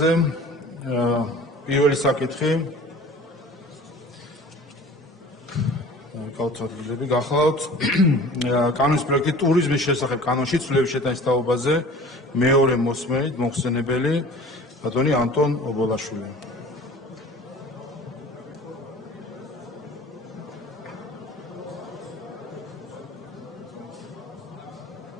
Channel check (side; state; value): both; normal; correlation 0.44